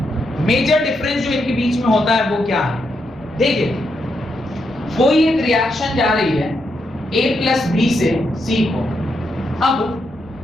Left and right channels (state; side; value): normal; both; correlation 0.82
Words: मेजर डिफरेंस जो इनके बीच में होता है वो क्या है, देखिए कोई एक रिएक्शन जा रही है A प्लस B से C को। अब